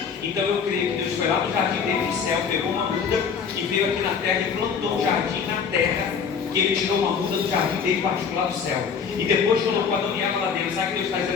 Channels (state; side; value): quieter; right; 6.4 dB